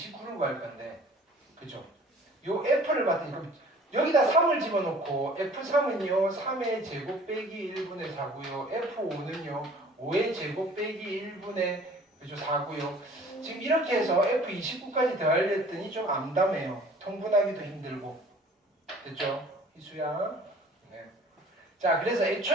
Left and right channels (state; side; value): normal; both; correlation 0.50